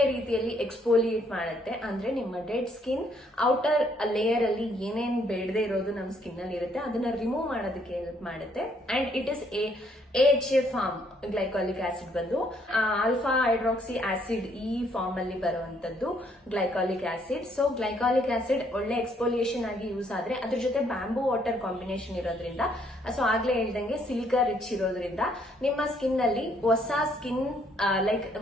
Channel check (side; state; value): both; normal; correlation 0.68